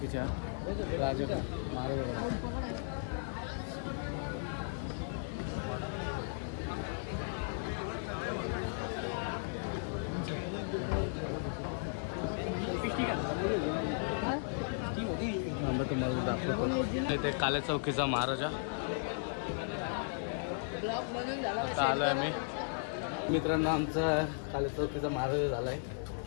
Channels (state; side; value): silent; right; 54 dB below the other